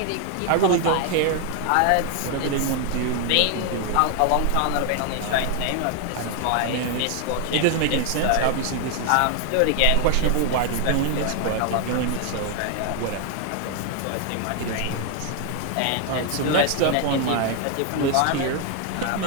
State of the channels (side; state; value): both; different; correlation 0.00